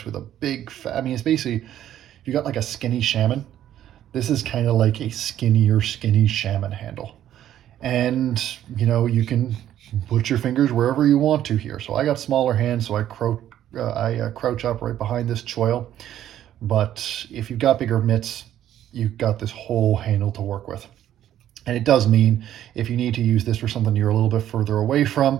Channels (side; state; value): left; quieter; 11.6 dB